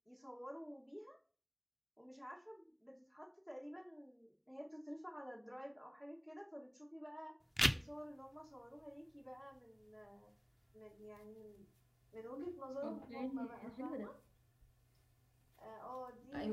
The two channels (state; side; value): identical; both; correlation 1.00